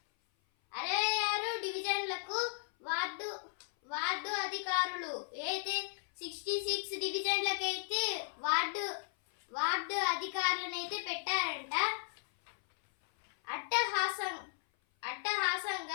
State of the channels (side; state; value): right; silent; 54 dB below the other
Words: 66 డివిజన్లకు వార్డు అధికారులు. అయితే 66 డివిజన్లకు అయితే వార్డు అధికారులను అయితే పెట్టారంట.